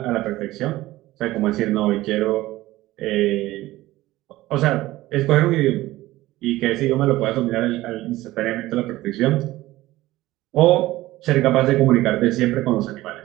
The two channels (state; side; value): quieter; left; 17.1 dB